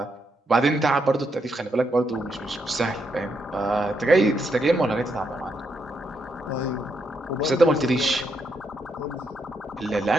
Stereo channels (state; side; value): normal; both; correlation 0.79